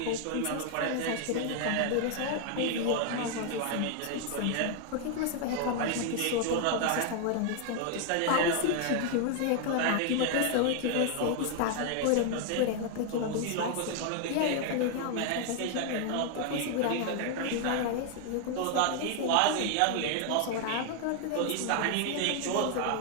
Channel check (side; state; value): both; different; correlation 0.00